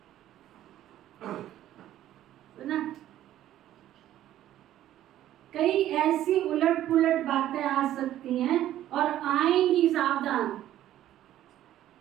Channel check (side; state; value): left; quieter; 12.7 dB